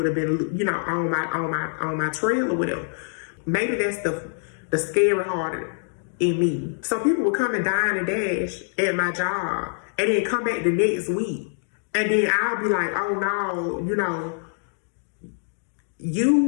have been, on my trail or whatever. Maybe that's the scary heart in me. So people would come and dine and dash at my job, and then come back the next week, and then I'll be like, oh no,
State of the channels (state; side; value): silent; right; digital silence